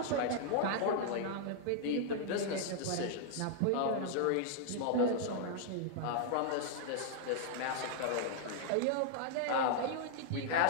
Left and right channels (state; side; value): different; both; correlation -0.01